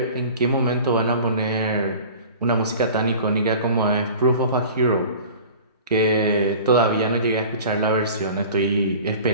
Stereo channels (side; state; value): both; inverted; correlation -0.41